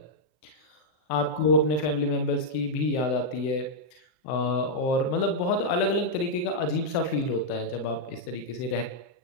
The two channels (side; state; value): right; late; 40 ms